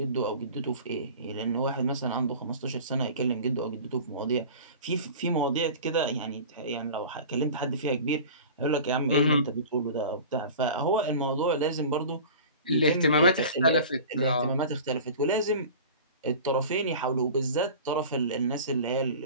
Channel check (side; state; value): both; inverted; correlation -0.38